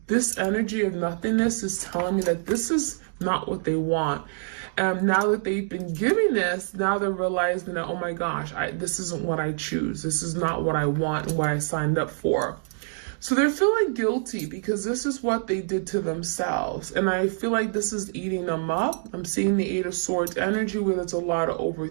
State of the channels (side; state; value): left; silent; digital silence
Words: this energy of nothingness is telling me that this is not what they want. Now that they've been giving this, now they're realizing that, oh my gosh, this isn't what I choose. This is not what I want and what I signed up for. So they're feeling guilty because this is what they did to themselves. And I feel like this is eating them up. I'm seeing the Eight of Swords energy where there's a lot of